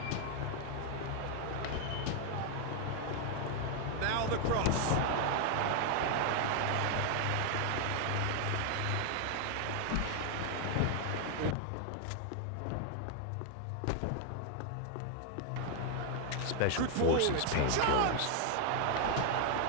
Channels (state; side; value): different; both; correlation 0.00